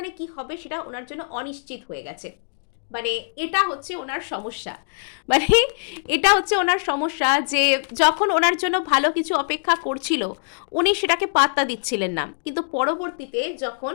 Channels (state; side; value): silent; right; digital silence